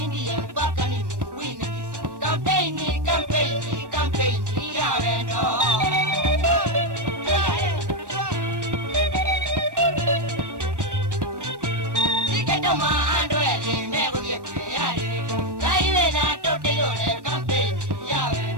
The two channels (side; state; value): left; late; 1.1 ms